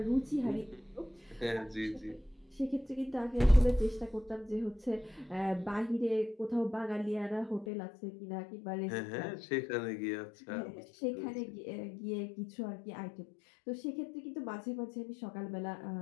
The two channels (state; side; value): drops out; right; at 7.7 s